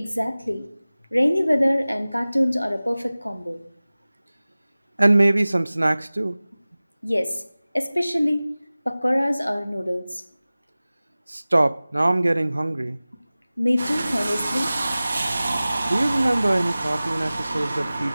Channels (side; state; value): both; inverted; correlation -0.98